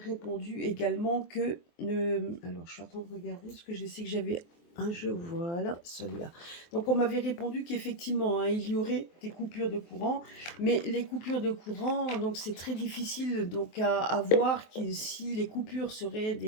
également que, alors je suis en train de regarder parce que je sais que j'avais un jeu, voilà, celui-là. Donc on m'avait répondu qu'effectivement, hein, il y aurait des coupures de courant, mais les coupures de courant, donc c'est très difficile donc à voir si les coupures seraient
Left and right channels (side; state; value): right; late; 23 ms